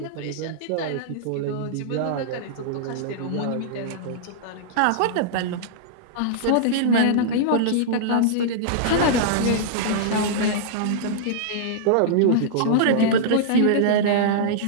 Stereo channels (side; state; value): both; different; correlation -0.02